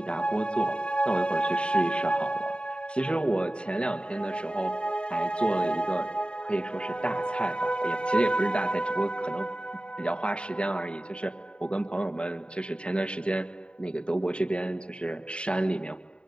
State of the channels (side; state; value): right; late; 0.053 ms